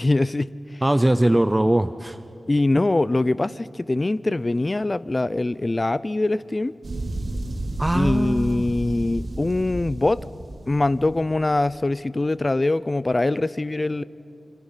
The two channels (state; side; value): normal; both; correlation 0.98